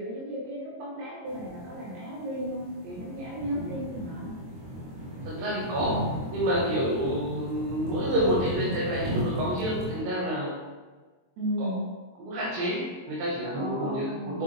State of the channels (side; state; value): left; late; 22 ms